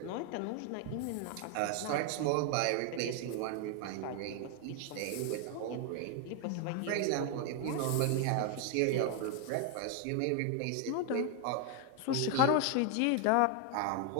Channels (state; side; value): different; both; correlation 0.01